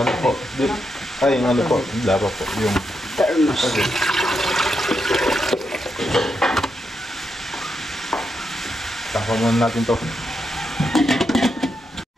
ano po. Ay, yung ano po. Dapat po. Yung Termos. okay. Takpan muna natin to.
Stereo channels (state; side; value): normal; both; correlation 0.83